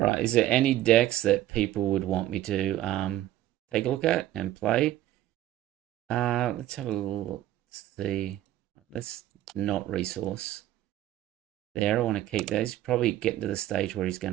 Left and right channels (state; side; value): quieter; left; 13.7 dB